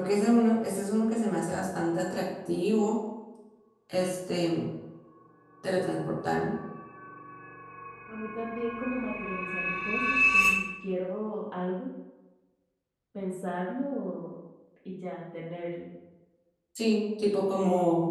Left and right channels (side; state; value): both; identical; correlation 1.00